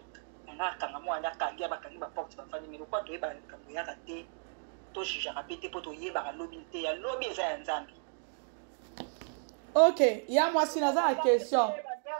nga kanga mwana kangia bakangi baporte bafandi mais lokwa toyeba likambo yaka te tojugeaka mpe te mpo toyebaka lobi te ya lobi eza ya nzambe ok ya mwasi naza na question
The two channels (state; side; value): silent; left; 55 dB below the other